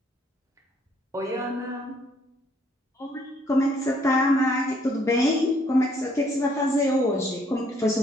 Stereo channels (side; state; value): both; normal; correlation 0.66